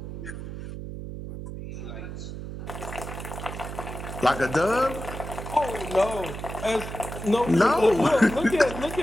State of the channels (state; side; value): noise; right; hum, 8 dB below the sound